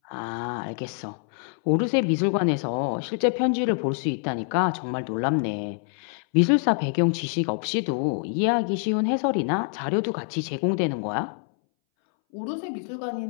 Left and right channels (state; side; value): silent; right; 61 dB below the other